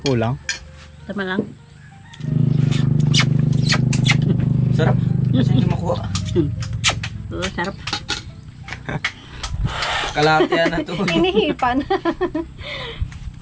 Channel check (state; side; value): identical; both; correlation 1.00